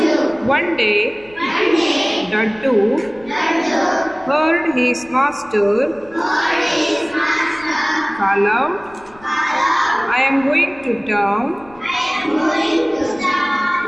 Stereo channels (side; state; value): left; noise; rumble, 26 dB below the sound